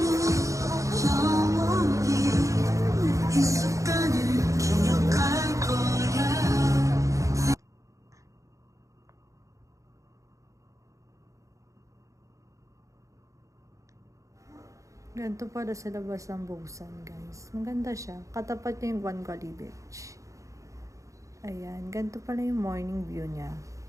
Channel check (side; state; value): left; late; 0.15 ms